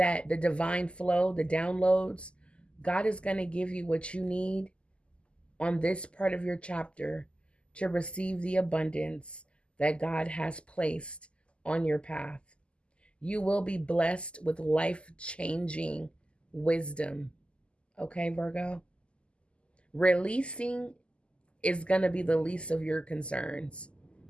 the divine flow, the downloads. God is going to give you what you need on this part of your chapter to receive the abundance that God has placed on your path. You will be blessed with life-changing wisdom. Okay, Virgo? Releasing is going to be the least of your concerns.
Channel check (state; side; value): late; right; 0.053 ms